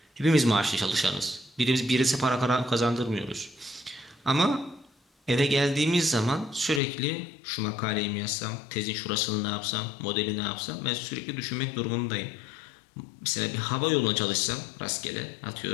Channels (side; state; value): right; drops out; at 6.8 s